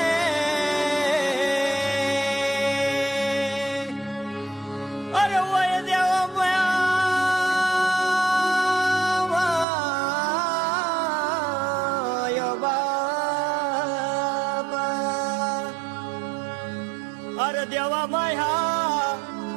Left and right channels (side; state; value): left; drops out; at 9.7 s